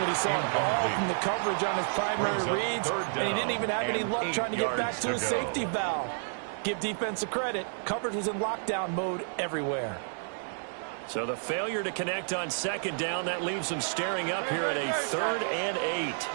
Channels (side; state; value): left; silent; 58 dB below the other